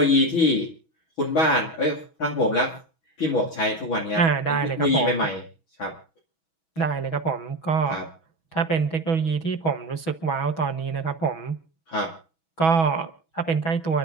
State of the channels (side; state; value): right; late; 6.2 ms